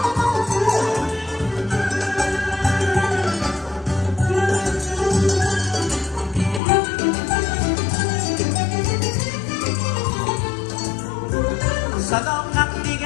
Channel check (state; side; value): drops out; right; at 6.6 s